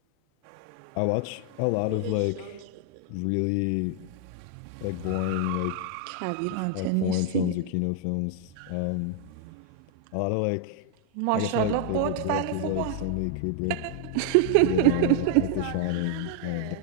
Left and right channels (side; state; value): both; different; correlation 0.00